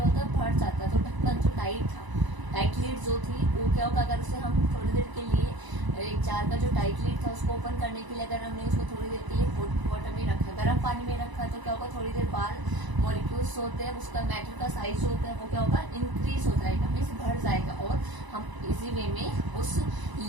होता है, बढ़ जाता है. तो ढक्कन जो टाइट था, टाइट लीड जो थी वो क्या होगा, अगर उसे हम थोड़ी देर के लिए एक जार का जो टाइट लीड था उसको ओपन करने के लिए अगर हमने उसको थोड़ी देर के लिए हॉट वाटर में रखा, गर्म पानी में रखा तो क्या होगा, थोड़ी देर बाद मॉलिक्यूल्स होते हैं, उसका मैटर का साइज जो होता है वो क्या होगा, इंक्रीज हो जाएगा, मीन्स बढ़ जाएगा, और हम इजी वे में उस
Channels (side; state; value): left; late; 1.0 ms